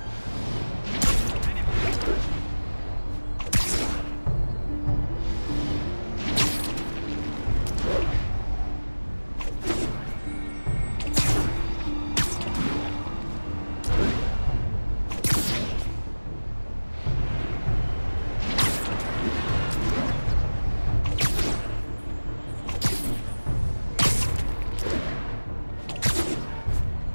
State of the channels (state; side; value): inverted; both; correlation -1.00